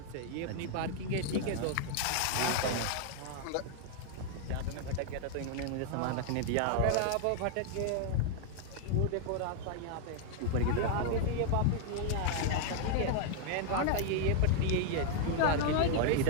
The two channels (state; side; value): different; both; correlation 0.00